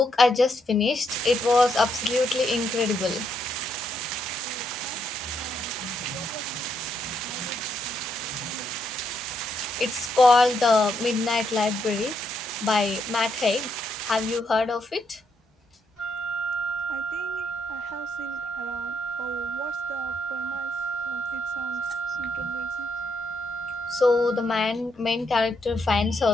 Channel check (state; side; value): normal; both; correlation 0.77